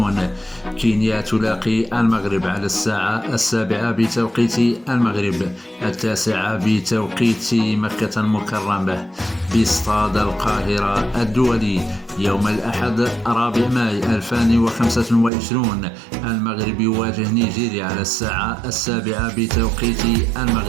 كينيا تلاقي المغرب على الساعة 7 بتوقيت المغرب، 9 بتوقيت مكة المكرمة باستاد القاهرة الدولي. يوم الأحد 4 ماي 2025 المغرب يواجه نيجيريا على الساعة 7 بتوقيت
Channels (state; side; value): drops out; left; at 15.3 s